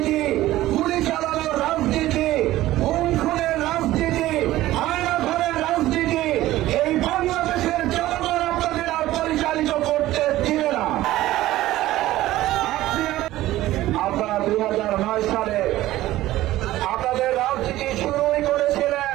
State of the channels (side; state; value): left; quieter; 15.6 dB